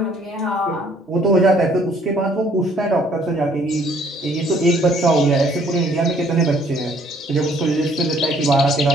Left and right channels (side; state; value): both; normal; correlation 0.62